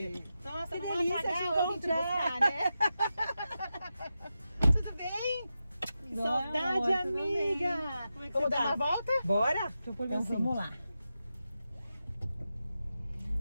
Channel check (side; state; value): both; inverted; correlation -0.90